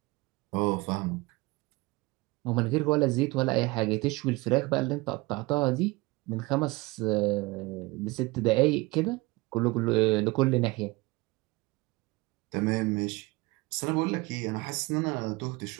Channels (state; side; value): quieter; left; 22.9 dB